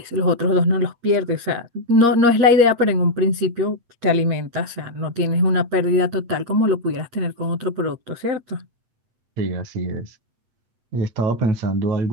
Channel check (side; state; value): left; late; 8.6 ms